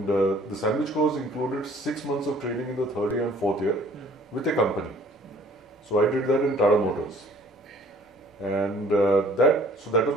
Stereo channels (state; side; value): normal; both; correlation 0.55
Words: the sandwich course included 6 months of training in the third year and fourth year with a company. So I did that in Tata Motors. And that